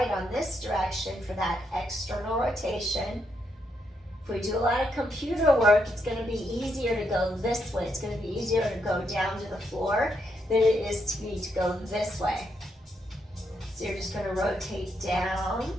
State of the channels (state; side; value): normal; both; correlation 0.79